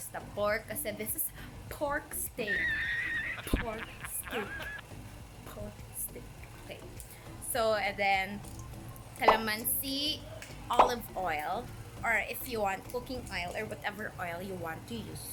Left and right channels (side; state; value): both; identical; correlation 1.00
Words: pork kasi this is pork steak. Pork steak. Pork steak. Okay. So, and then, calamansi, olive oil, or if you want cooking oil or whatever oil you want to